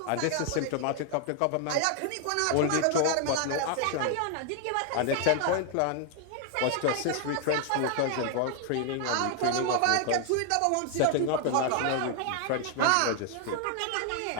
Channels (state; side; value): different; both; correlation 0.00